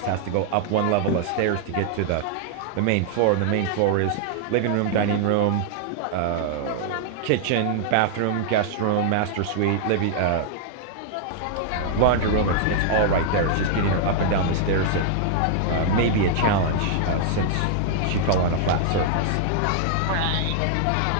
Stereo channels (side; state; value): both; different; correlation -0.01